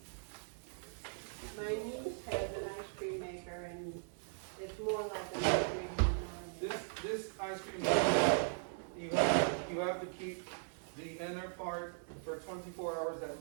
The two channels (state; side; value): silent; left; digital silence